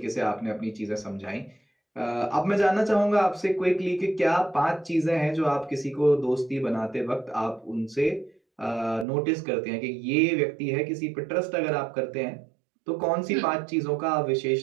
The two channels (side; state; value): left; drops out; at 9.1 s